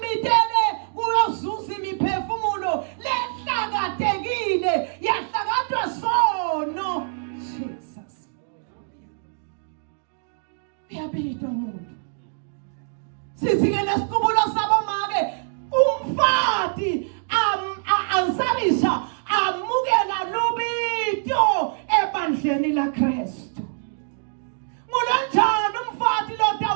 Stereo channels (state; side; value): silent; left; digital silence